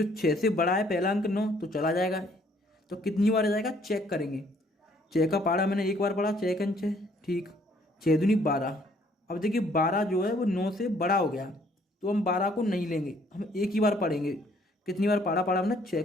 6 से बड़ा है पहला अंक 9, तो चला जाएगा, तो कितनी बार जाएगा चेक करेंगे। 6 का पारा मैंने एक बार पढ़ा, 6 6, ठीक, 6 दूनी 12। अब देखिए 12 जो है वो 9 से बड़ा हो गया, तो हम 12 को नहीं लेंगे, हम एक ही बार पढ़ेंगे। कितनी बार पाड़ा पढ़ा हमने, 6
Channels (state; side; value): normal; both; correlation 0.63